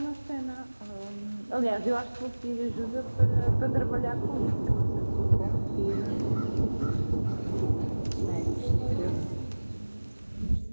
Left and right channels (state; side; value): inverted; both; correlation -1.00